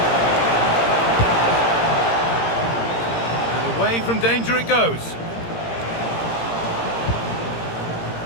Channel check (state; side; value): late; right; 17 ms